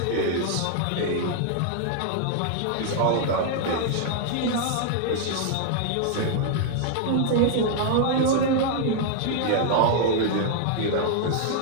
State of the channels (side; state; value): both; different; correlation 0.00